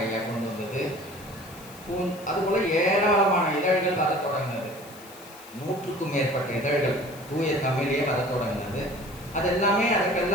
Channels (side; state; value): left; noise; hiss, 20 dB below the sound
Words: ஐயா கொண்டு வந்தது. அதுபோல ஏராளமான இதழ்கள் வர தொடங்கினது. 100க்கும் மேற்பட்ட இதழ்கள் தூய தமிழே வர தொடங்கினது.